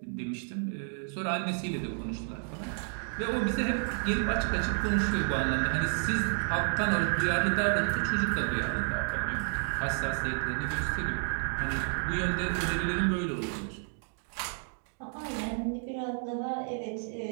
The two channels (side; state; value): left; silent; 57 dB below the other